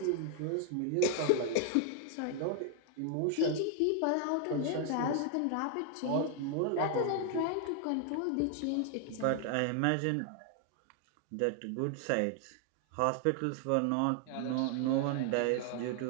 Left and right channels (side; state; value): both; different; correlation 0.00